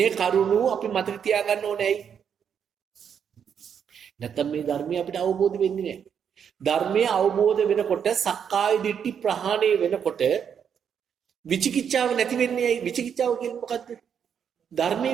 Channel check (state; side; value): quieter; left; 7.8 dB